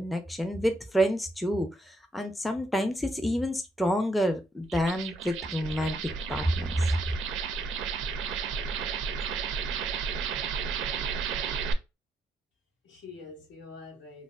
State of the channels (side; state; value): both; normal; correlation 0.75